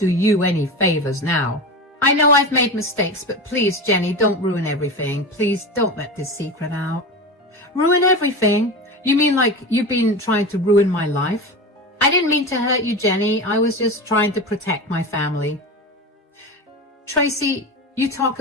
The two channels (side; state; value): both; normal; correlation 0.24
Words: you any favors now? I know I've made mistakes, but please, Jenny, don't ruin everything. Please don't let this secret out. Ruin everything? You mean like you've been trying to ruin my life? I didn't mean to hurt you, Jenny. I was just trying to protect my family. Tracy, you talk